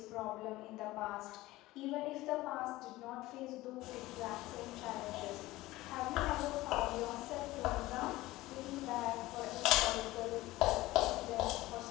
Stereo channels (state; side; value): quieter; right; 18.1 dB